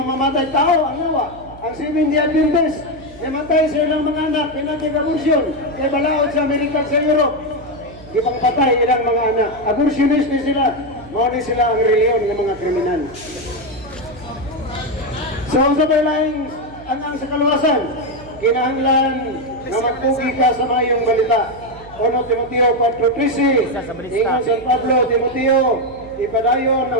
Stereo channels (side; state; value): right; noise; hum, 20 dB below the sound